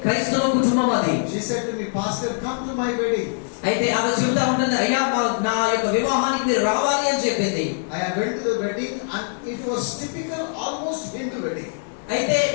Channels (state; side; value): silent; right; digital silence